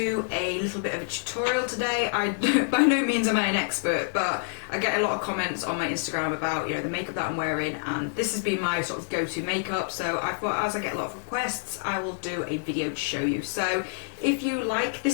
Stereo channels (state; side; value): silent; right; digital silence